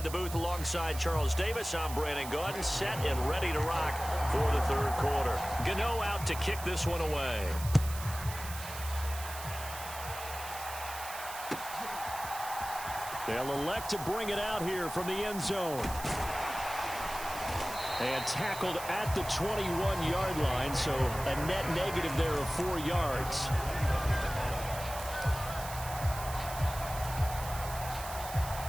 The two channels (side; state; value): right; noise; hiss, 11 dB below the sound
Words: the booth alongside Charles Davis. I'm Brandon Gaudin, set and ready to rock for the 3rd quarter. Gano out to kick this one away. They'll elect to bring it out here from the end zone. And tackled at the 21-yard line, so a net negative there of 4 yards.